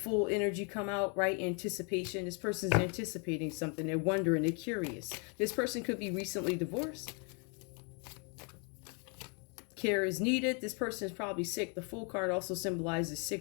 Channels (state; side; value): quieter; right; 36.6 dB